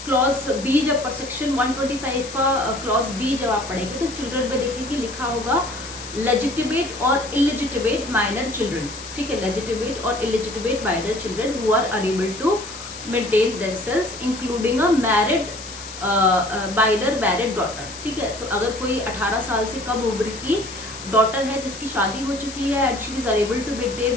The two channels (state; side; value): noise; left; hiss, 12 dB below the sound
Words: क्लॉज बी, जब सेक्शन 125 का क्लॉज बी जब आप पढ़ेंगे तो चिल्ड्रन में देखेंगे लिखा होगा लेजिटिमेट और इलिजिटिमेट माइनर चिल्ड्रन। ठीक है, लेजिटिमेट और illegitimate minor children who are unable to maintain themselves including a married minor married daughter. ठीक है, तो अगर कोई 18 साल से कम उम्र की डॉटर है जिसकी शादी हो चुकी है and she is unable to